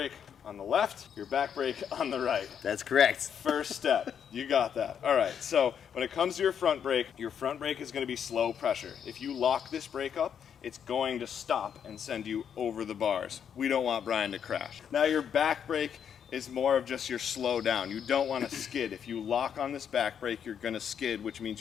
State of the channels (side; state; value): right; quieter; 8.1 dB